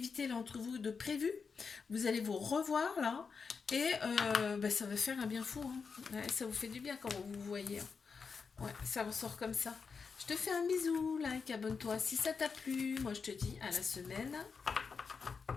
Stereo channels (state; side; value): quieter; right; 5.4 dB